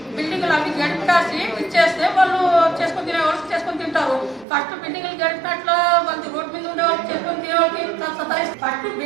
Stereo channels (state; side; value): drops out; left; at 4.5 s